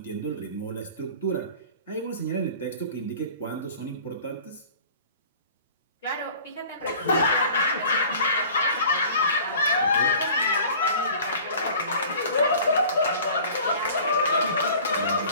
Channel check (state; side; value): inverted; both; correlation -0.45